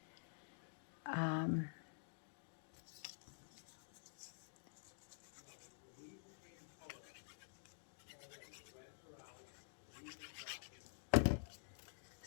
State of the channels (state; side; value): silent; right; digital silence